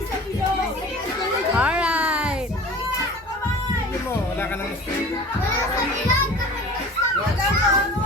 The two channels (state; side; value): normal; both; correlation 0.41